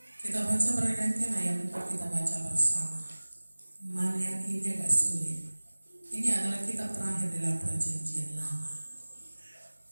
Kita baca bergantian ayat 4, kita baca bersama. Maleakhi ini agak sulit. Ini adalah kitab terakhir dalam perjanjian lama.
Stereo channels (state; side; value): inverted; both; correlation -1.00